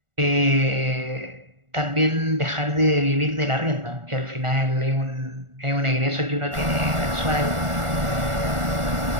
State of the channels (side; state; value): left; late; 1.4 ms